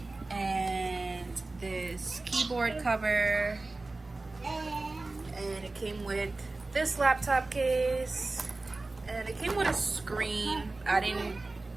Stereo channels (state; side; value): quieter; left; 3.2 dB